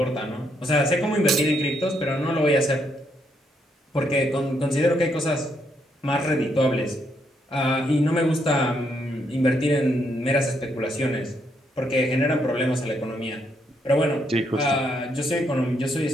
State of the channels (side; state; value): both; normal; correlation 0.75